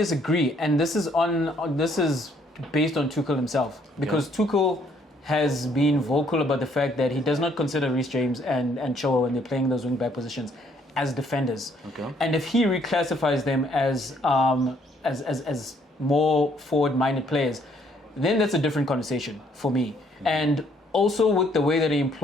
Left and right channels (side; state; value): both; normal; correlation 0.66